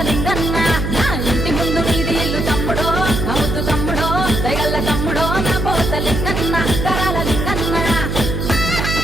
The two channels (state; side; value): noise; right; hum, 2 dB below the sound